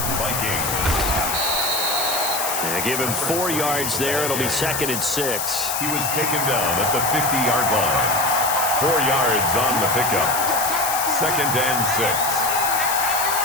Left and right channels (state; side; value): noise; left; hiss, 2 dB below the sound